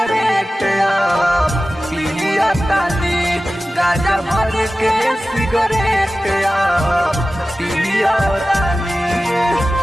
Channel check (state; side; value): normal; both; correlation 0.95